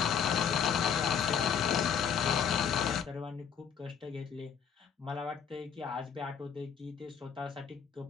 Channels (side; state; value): right; quieter; 7.4 dB